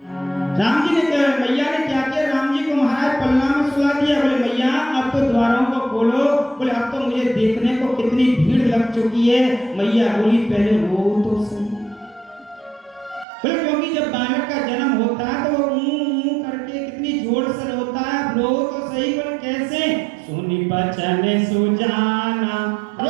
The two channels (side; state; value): left; drops out; at 13.2 s